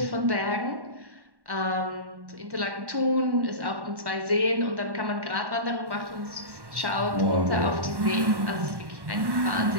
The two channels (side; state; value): left; late; 1.1 ms